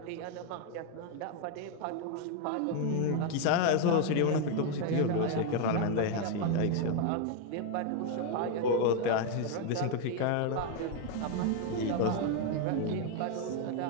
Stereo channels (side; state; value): both; different; correlation 0.01